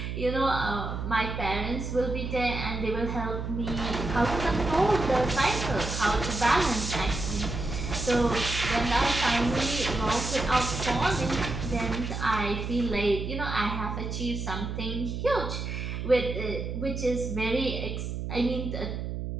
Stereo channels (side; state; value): right; noise; hum, 4 dB below the sound